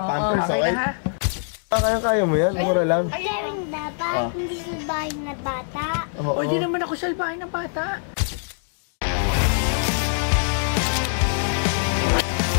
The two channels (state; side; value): silent; right; digital silence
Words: pampers, Okay okay? na ha? Kaya mo yan, mura lang. Pero dapat hindi salbayan na bata. O, hindi naman ako salbayan ng bata.